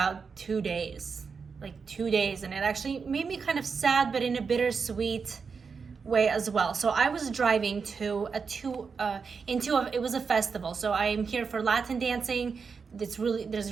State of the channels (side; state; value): left; quieter; 5.5 dB